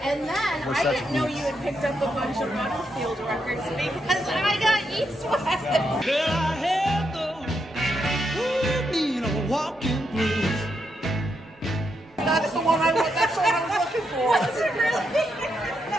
And then We're I such didn't know geeks. you had picked up a bunch of Butterfield records because I got East West. Girl, I had those walking blues. That's the one I was looking for. Was it really?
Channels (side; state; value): both; normal; correlation 0.81